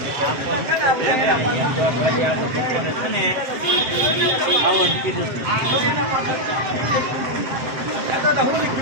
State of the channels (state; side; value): late; left; 7.7 ms